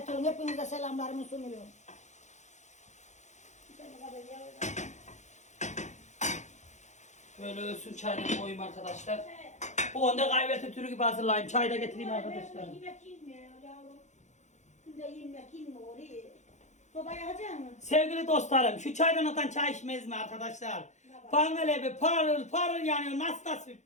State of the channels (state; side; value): late; right; 0.34 ms